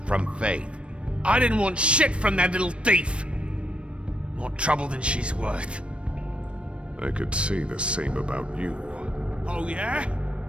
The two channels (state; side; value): late; left; 0.059 ms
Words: from Faith? I didn't want shit from that little thief. More trouble than she's worth. I could say the same about you. Oh yeah?